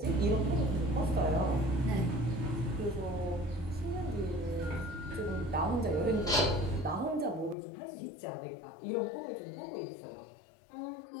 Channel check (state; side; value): drops out; right; at 7.6 s